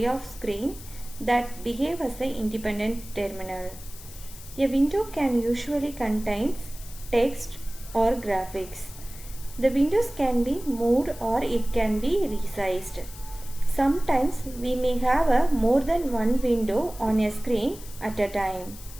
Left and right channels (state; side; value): noise; left; hiss, 17 dB below the sound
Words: of screen that behave as an independent terminal. A window can usually contain text or graphics. The windows can be moved or it can be resized. Sometimes we may have more than one window on a screen at a time.